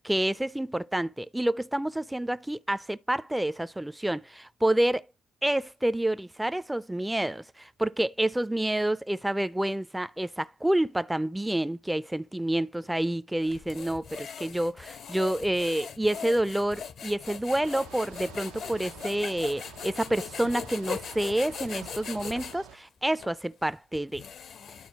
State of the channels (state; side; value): normal; both; correlation 0.98